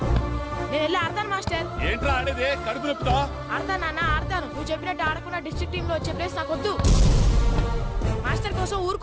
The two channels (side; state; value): both; identical; correlation 1.00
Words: నేను వెళ్ళి ఆడతాను మాస్టర్. ఏంట్రా ఆడేది? కడుపు నొప్పుతా? ఆడతాను నాన్న, ఆడతాను. నువ్వు చెప్పినట్టు ఆడకుండా డిస్ట్రిక్ట్ టీమ్ లో వచ్చే ప్లేస్ నాకు వద్దు. మాస్టర్ కోసం, ఊరు